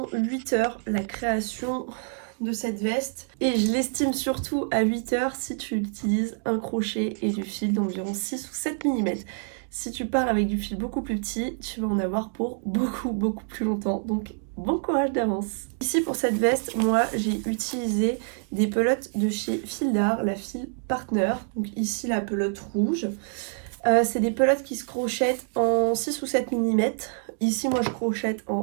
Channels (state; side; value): silent; left; 61 dB below the other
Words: 8 heures la création de cette veste et je l'estime surtout à 8 heures si tu utilises un crochet et du fil d'environ 6 ou 7 mm. Si tu pars avec du fil beaucoup plus petit, tu vas en avoir pour beaucoup plus longtemps, donc bon courage d'avance. Ici pour cette veste, moi j'ai utilisé des pelotes de chez Fil d'Art, la Fil Partner, donc ici la pelote rouge. C'est des pelotes qui se crochettent en 6 ou 7 mm. Ici moi je crochette